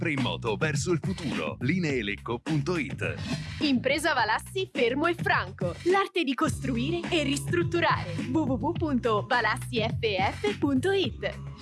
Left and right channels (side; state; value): both; identical; correlation 1.00